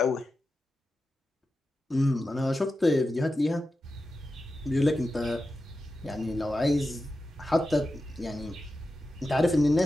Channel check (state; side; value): normal; both; correlation 0.91